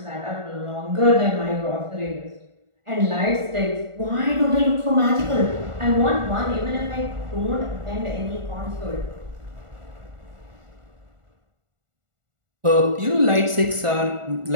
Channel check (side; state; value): left; late; 1.4 ms